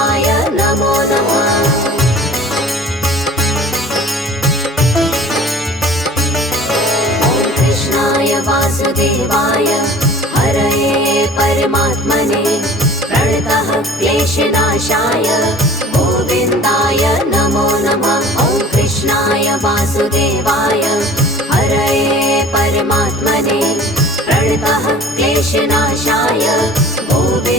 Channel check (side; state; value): both; normal; correlation 0.45